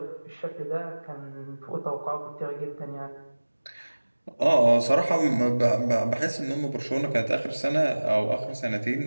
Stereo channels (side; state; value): both; inverted; correlation -1.00